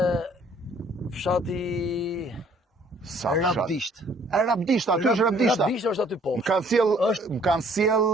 fshati Rabdisht. Rabdisht, aty është Rabdishta. Rabdisht është aty poshtë. Më kanë sjell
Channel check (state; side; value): normal; both; correlation 0.59